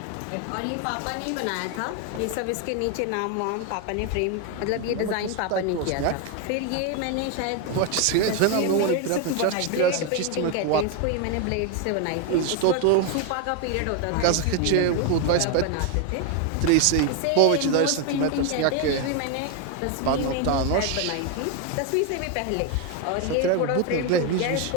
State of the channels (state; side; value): different; both; correlation 0.01